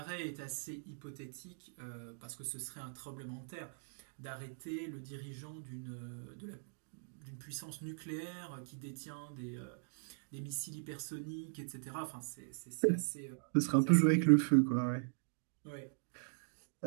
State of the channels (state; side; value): silent; left; digital silence